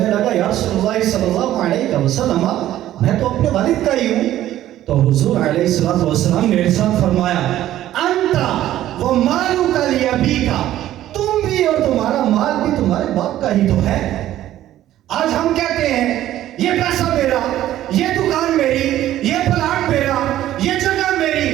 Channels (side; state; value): left; quieter; 13.2 dB